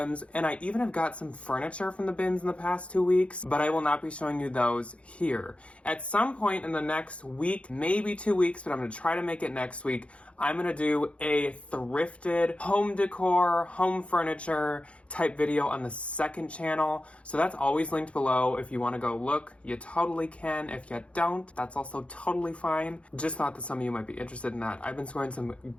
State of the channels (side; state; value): right; late; 0.061 ms